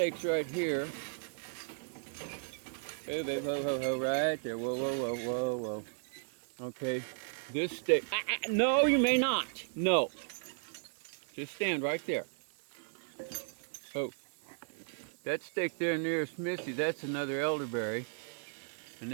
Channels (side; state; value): left; silent; digital silence